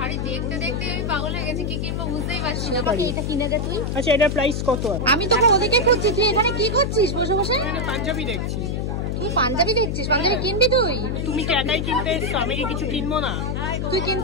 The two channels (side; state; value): left; noise; hum, 1 dB below the sound